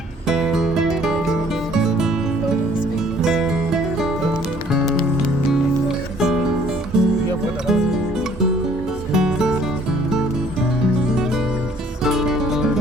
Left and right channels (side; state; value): both; normal; correlation 0.59